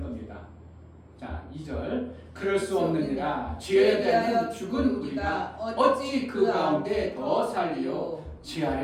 겁니다. 자, 2절. 그럴 수 없느니라. 죄에 대하여 죽은 우리가 어찌 그 가운데 더 살리요. 죄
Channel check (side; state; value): both; identical; correlation 1.00